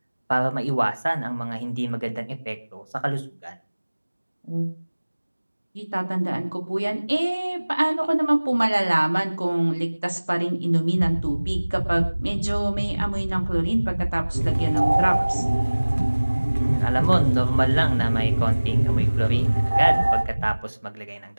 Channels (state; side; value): inverted; both; correlation -1.00